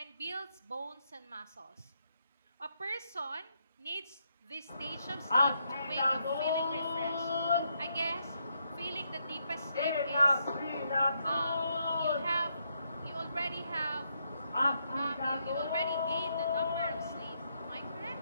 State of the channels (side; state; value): both; inverted; correlation -0.78